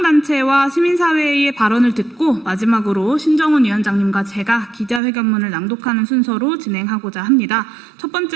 시민사회의 발언을 듣고 마지막으로 신정훈 위원장님과 제가 기자회견문을 낭독하는 순서로 진행하고자 합니다. 첫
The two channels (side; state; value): left; drops out; at 5.0 s